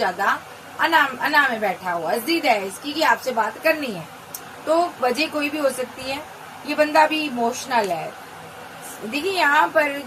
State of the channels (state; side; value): identical; both; correlation 1.00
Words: अना में बैठा हुआ, जिद है इसकी कि आपसे बात करनी है। तो वजह कोई भी हो सकती है, ये बंदा भी इमोशनल है। देखिए यहाँ पर